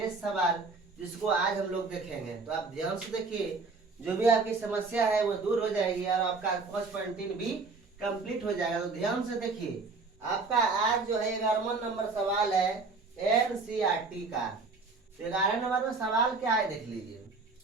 सवाल जिसको आज हम लोग देखेंगे। तो आप ध्यान से देखिए, जो भी आपकी समस्या है वो दूर हो जाएगी और आपका 5.3 भी कंप्लीट हो जाएगा। तो ध्यान से देखिए, आपका आज जो है 11वां नंबर सवाल है एनसीईआरटी का। तो 11 नंबर में सवाल क्या है देख लीजिए।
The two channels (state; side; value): quieter; left; 4.1 dB